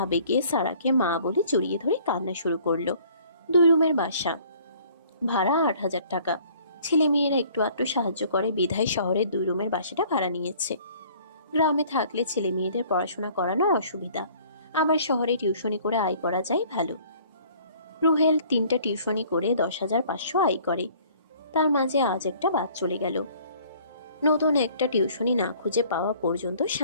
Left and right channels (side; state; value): both; inverted; correlation -0.55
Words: আবেগে সারাকে মা বলে জড়িয়ে ধরে কান্না শুরু করলো। 2 রুমের বাসা, ভাড়া 8,000 টাকা। ছেলে মেয়েরা একটু আধটু সাহায্য করে বিধায় শহরের 2 রুমের বাসাটা ভাড়া নিয়েছে। গ্রামে থাকলে ছেলে মেয়েদের পড়াশোনা করানো অসুবিধা, আবার শহরে টিউশনি করে আয় করা যায় ভালো। রুহেল 3টা টিউশনি করে 10,500 আয় করে। তার মাঝে আজ একটা বাদ চলে গেল। নতুন একটা টিউশনি না খুঁজে পাওয়া পর্যন্ত